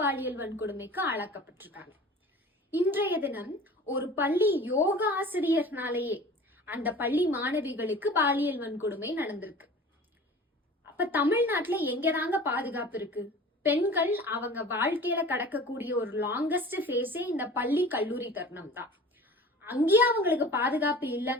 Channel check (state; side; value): normal; both; correlation 0.41